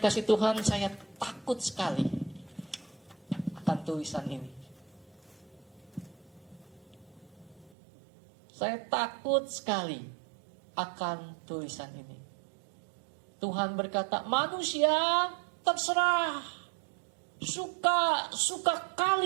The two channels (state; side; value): drops out; left; at 7.7 s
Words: kasih Tuhan, saya takut sekali akan tulisan ini. Saya takut sekali akan tulisan ini. Tuhan berkata, manusia terserah, suka